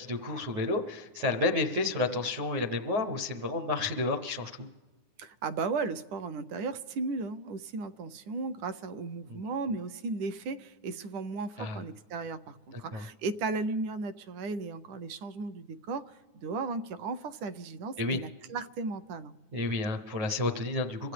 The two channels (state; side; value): late; left; 9.7 ms